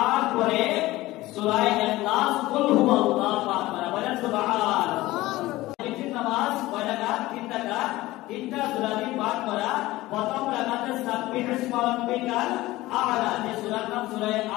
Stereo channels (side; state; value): right; quieter; 18.1 dB